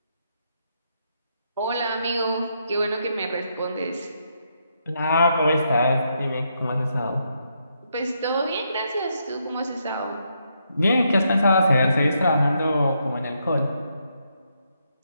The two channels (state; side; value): inverted; both; correlation -0.78